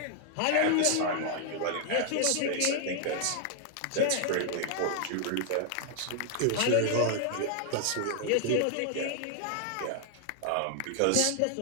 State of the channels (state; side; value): different; both; correlation 0.00